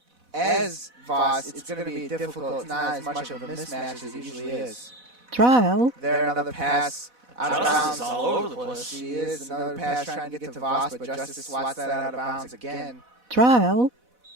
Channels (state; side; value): late; left; 4.1 ms